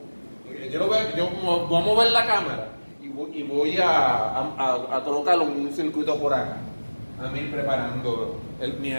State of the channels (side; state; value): both; inverted; correlation -1.00